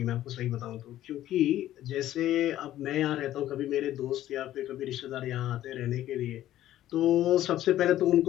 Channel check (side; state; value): right; quieter; 13.2 dB